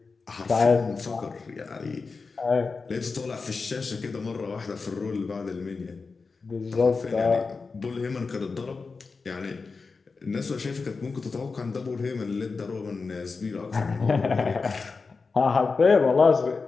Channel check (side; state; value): right; quieter; 4.5 dB